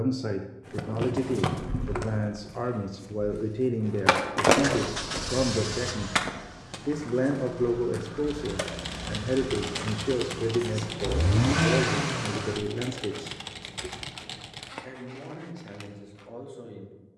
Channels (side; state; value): both; identical; correlation 1.00